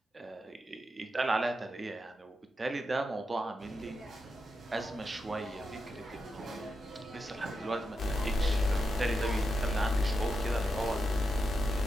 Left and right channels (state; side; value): normal; both; correlation 0.86